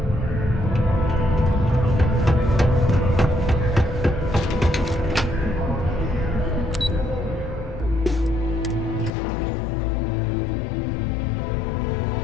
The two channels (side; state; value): right; drops out; at 9.1 s